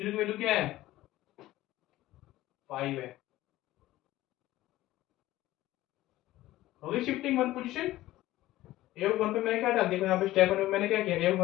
की वैल्यू क्या है 5 है। होगी शिफ्टिंग वन पोजीशन। ए वन पे मैंने क्या डाल दिया, यहाँ पे स्टेप वन में मैंने क्या किया, ए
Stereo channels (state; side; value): quieter; right; 16.0 dB